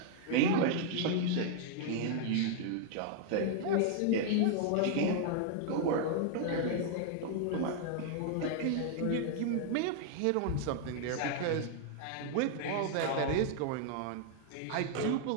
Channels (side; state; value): both; different; correlation 0.00